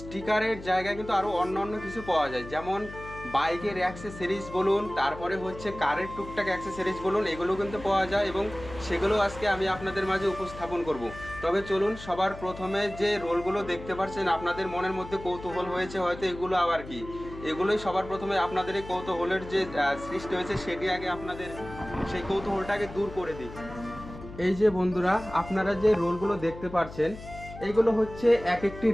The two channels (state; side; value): noise; left; hum, 14 dB below the sound